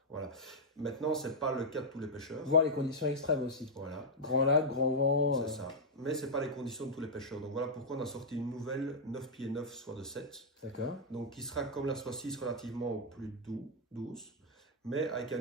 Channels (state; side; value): normal; both; correlation -0.06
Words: Voilà. Maintenant, c'est pas le cas de tous les pêcheurs. Voir les conditions extrêmes aussi. Voilà. Grand lac, grand vent. C'est ça. Mais c'est pas les conditions de tous les pêcheurs. Donc voilà pourquoi on a sorti une nouvelle 9 pieds 9 soit de 7. D'accord. Donc qui sera comme la soit 6 relativement plus douce, mais avec un